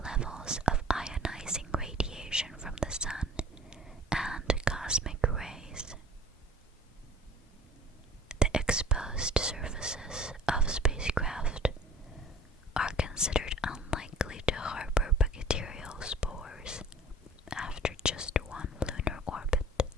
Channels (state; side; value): normal; both; correlation 0.47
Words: levels of ionizing radiation from the sun and cosmic rays. The exposed surfaces of spacecraft are considered unlikely to harbor bacterial spores after just one lunar orbit.